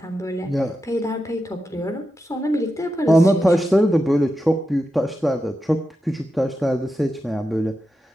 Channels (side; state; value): both; normal; correlation 0.89